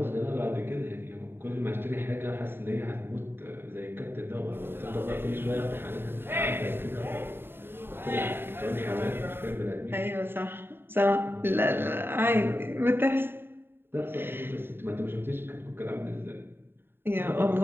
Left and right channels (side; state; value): left; late; 0.11 ms